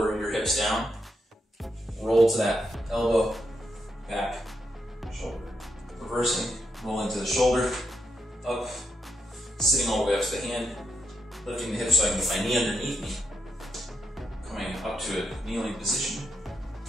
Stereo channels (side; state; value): both; normal; correlation 0.83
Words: your hips down, roll to that elbow, back, shoulder. Reversing, roll into the shoulder, up, sitting all the way up to the hand, lifting the hips so I can get my knee underneath me, coming up to a kneeling position,